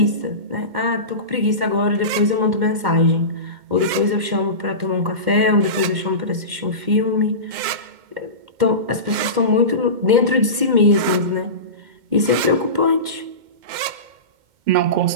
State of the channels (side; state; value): left; late; 2.1 ms